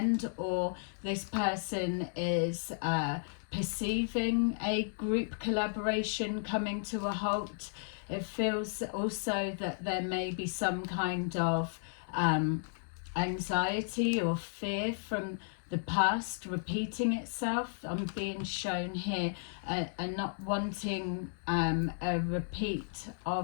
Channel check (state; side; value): silent; right; digital silence